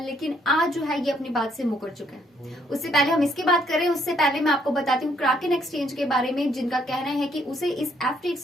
लेकिन आज जो है ये अपनी बात से मुकर चुका है। उससे पहले हम इसकी बात करें, उससे पहले मैं आपको बताती हूँ क्राकेन एक्सचेंज के बारे में, जिनका कहना है कि उसे इस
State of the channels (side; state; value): both; normal; correlation 0.68